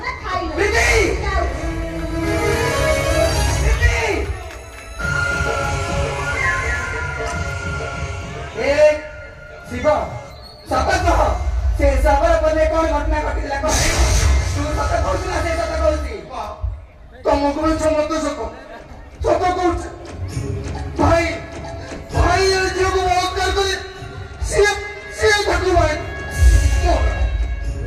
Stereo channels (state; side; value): identical; both; correlation 1.00